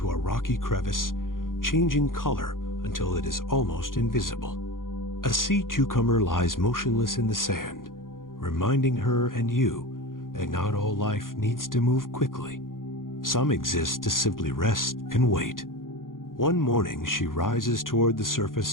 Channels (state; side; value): late; right; 0.90 ms